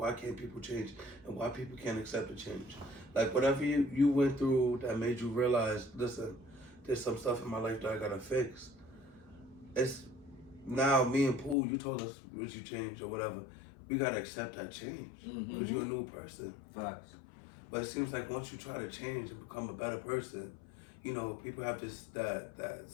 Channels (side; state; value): right; drops out; at 11.6 s